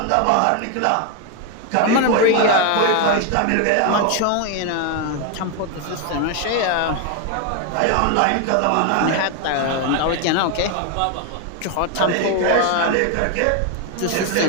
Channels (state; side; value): different; both; correlation 0.01